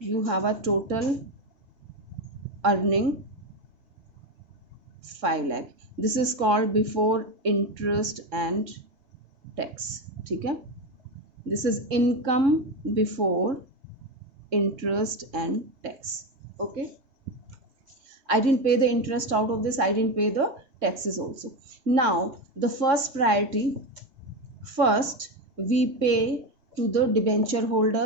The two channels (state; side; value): late; left; 3.6 ms